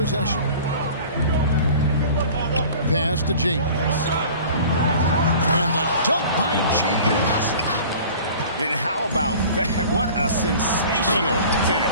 Pass to James. And the dunk by James. And how about that? What a sensational finish.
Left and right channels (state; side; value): inverted; both; correlation -0.44